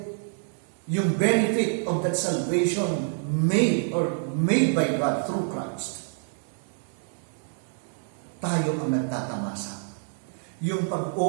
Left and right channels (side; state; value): left; silent; digital silence